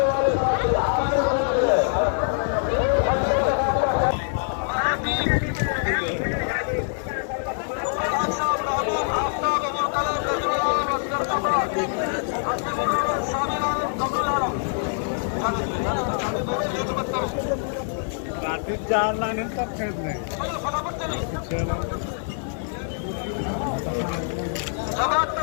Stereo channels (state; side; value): silent; right; digital silence